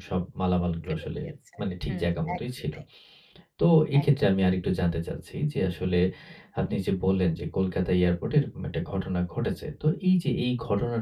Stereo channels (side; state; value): both; identical; correlation 1.00